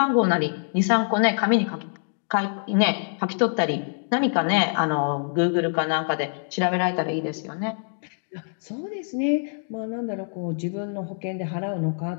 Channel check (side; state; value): right; silent; digital silence